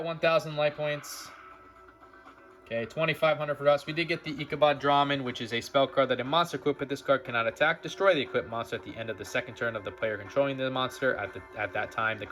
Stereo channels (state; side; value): identical; both; correlation 1.00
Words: 1,000 life points. Okay, 2,500 for us. We did get the Ichabod Draman, which is a spell card that a monster equipped with this card cannot attack. Destroy the equipped monster at the end of the second turn of the player controlling the monster. At that time, the